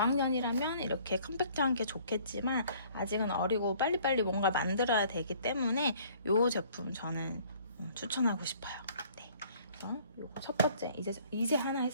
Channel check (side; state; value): both; inverted; correlation -0.57